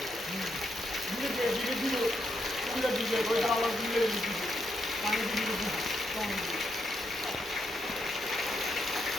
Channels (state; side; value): normal; both; correlation 0.80